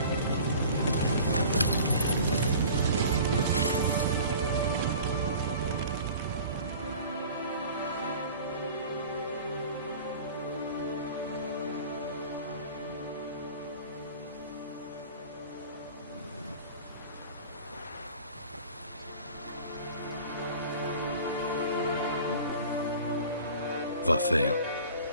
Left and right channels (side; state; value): both; inverted; correlation -0.43